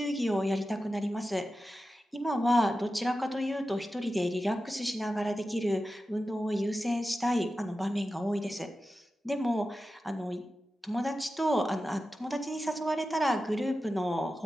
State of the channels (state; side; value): normal; both; correlation 0.93